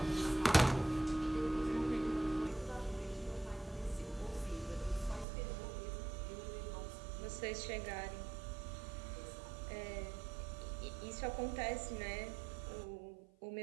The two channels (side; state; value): left; drops out; at 5.2 s